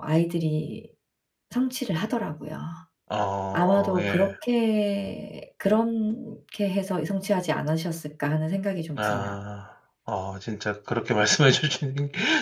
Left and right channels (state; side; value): identical; both; correlation 1.00